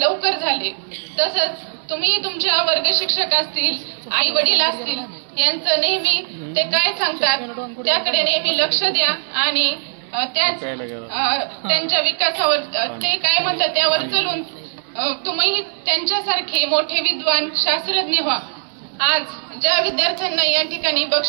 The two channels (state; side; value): silent; left; 66 dB below the other